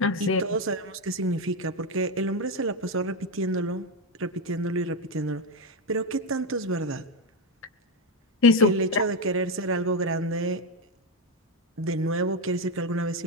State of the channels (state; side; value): normal; both; correlation 0.08